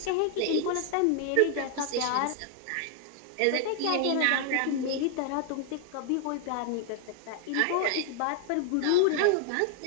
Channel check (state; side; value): different; both; correlation 0.00